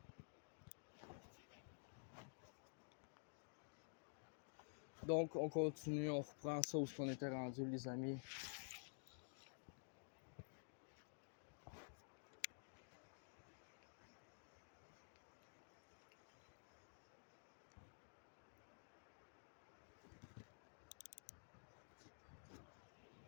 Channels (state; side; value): silent; right; digital silence